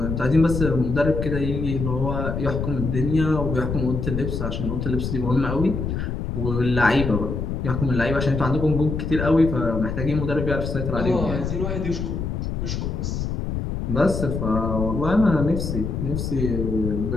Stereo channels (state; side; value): noise; left; rumble, 3 dB below the sound